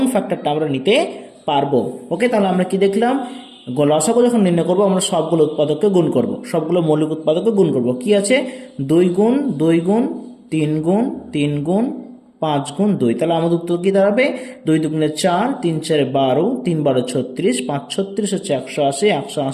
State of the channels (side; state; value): both; identical; correlation 1.00